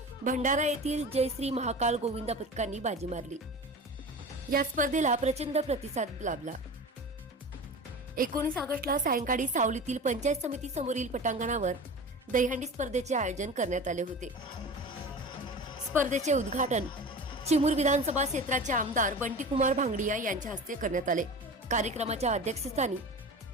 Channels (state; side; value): normal; both; correlation 0.33